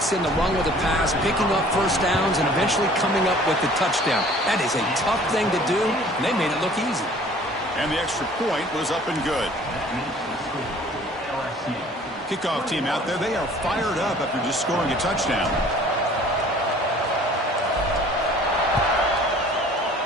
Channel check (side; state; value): both; normal; correlation 0.51